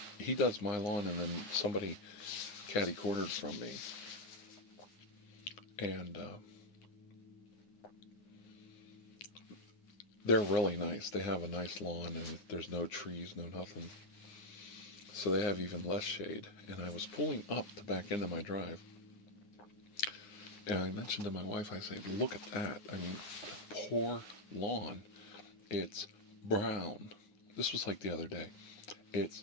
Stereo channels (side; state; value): right; late; 9.7 ms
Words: He does my lawn, and then somebody catty-cornered from me. And they're really nice. They have a nice lawn, and there's no trees, no nothing. So they have even less shade. And I was pulling up to back into my drive. And I mentioned to my wife, I said, look at that. I mean, poor lawn. It's brown. This was like the other day. It's